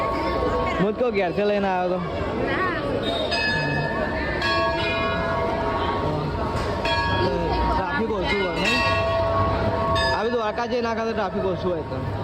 હું તો ઘેરથી લઈને આવ્યો હતો. ટ્રાફિક ઓછું હોય નહીં. આવી દ્વારકા જઈ નાખા તો ટ્રાફિક ઓછું હોય તો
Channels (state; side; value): identical; both; correlation 1.00